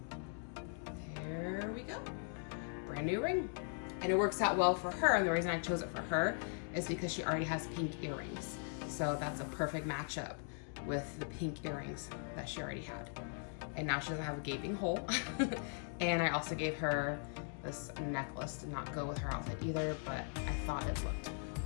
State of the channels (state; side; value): silent; right; 51 dB below the other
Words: There we go. Brand new ring. And it works out well for her, and the reason I chose it for her is because she already has pink earrings. So that's a perfect matchup with the pink earrings that she already had. And now she doesn't have a gaping hole. And I also gave her this necklace to not go with her outfit either, but I thought it looked